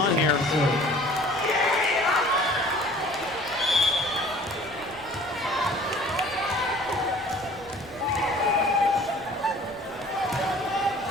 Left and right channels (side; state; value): left; noise; rumble, 24 dB below the sound